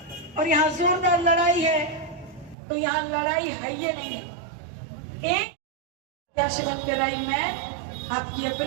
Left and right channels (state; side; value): drops out; left; at 2.6 s